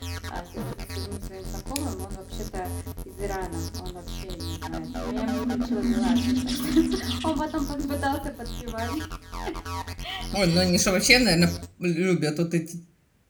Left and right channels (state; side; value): identical; both; correlation 1.00